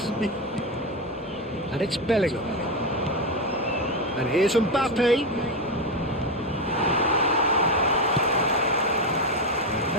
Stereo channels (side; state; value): both; normal; correlation 0.11